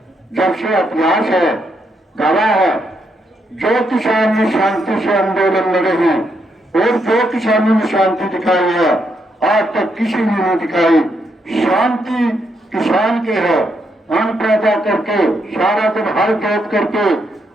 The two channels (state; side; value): normal; both; correlation 0.78